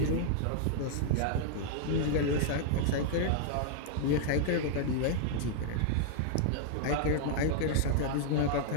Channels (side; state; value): both; different; correlation -0.01